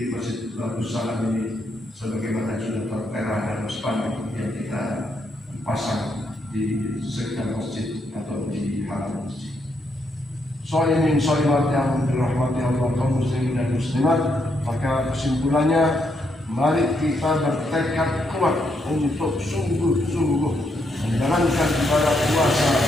Masjid Batu Salam ini sebagaimana sudah tertera dalam spanduk yang kita pasang di sekitar masjid atau di halaman masjid. Sholimin sholimat yang dirahmati Allah kaum muslimin dan muslimat, maka kesimpulannya, mari kita bertekad kuat untuk sungguh-sungguh menjalankan ibadah puasa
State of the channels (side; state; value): both; normal; correlation 0.78